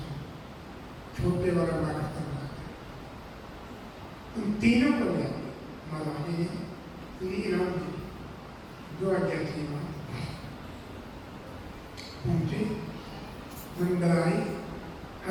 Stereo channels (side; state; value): both; identical; correlation 1.00